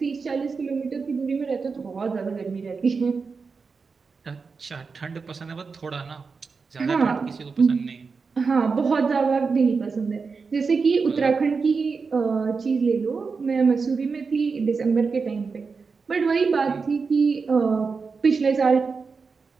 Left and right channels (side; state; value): left; quieter; 4.9 dB